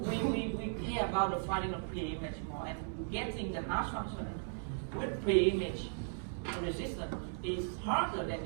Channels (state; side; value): silent; left; digital silence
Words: about the finding of pre-image more, and getting the hash function with pre-image resistant is harder than